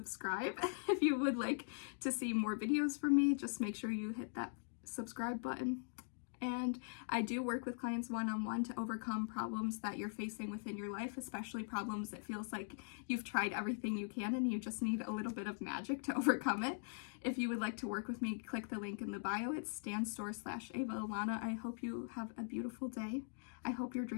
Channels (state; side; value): silent; right; digital silence